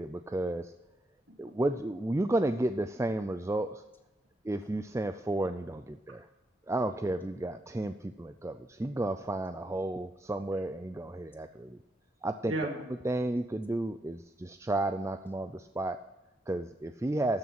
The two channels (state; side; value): normal; both; correlation 0.80